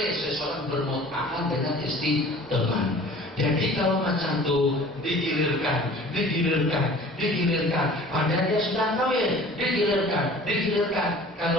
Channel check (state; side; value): normal; both; correlation 0.46